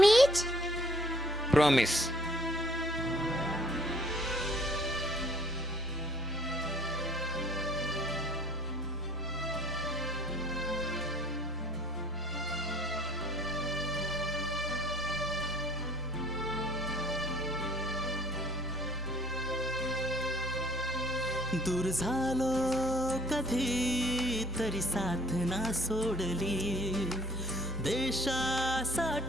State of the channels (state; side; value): normal; both; correlation 0.57